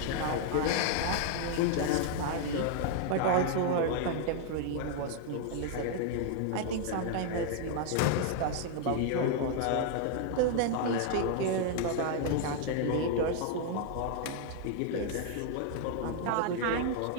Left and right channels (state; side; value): different; both; correlation 0.00